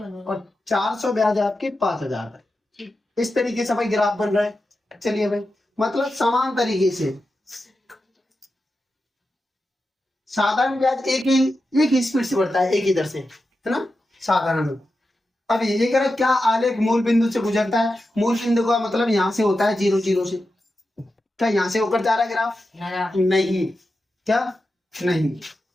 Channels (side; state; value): both; normal; correlation 0.90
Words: और 400 ब्याज है आपकी 5000 रुपए। इस तरीके से भाई ग्राफ बन रहा है। चलिए भाई, मतलब समान तरीके से साधारण ब्याज एक ही स्पीड से बढ़ता है, एक ही दर से, है ना, साधारण। अब ये कह रहा है क्या आलेख मूल बिंदु से गुजरता है? मूल बिंदु का मतलब यहाँ से होता है 0 0 से। क्या यहाँ से होकर जा रहा है ग्राफ? नहीं। क्या? नहीं।